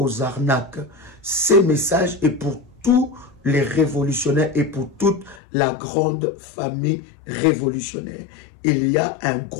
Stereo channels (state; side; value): drops out; right; at 5.4 s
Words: arnaques. Ces messages est pour tous les révolutionnaires et pour toute la grande famille révolutionnaire. Il y a un